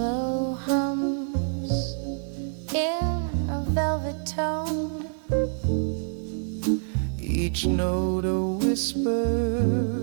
hums in a velvet tone, each note a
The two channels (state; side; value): silent; left; digital silence